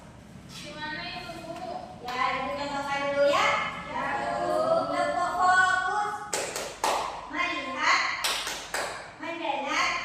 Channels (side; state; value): both; identical; correlation 1.00